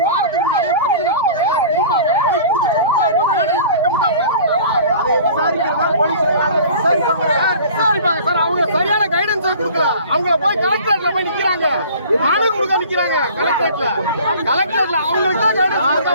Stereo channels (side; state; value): both; inverted; correlation -0.44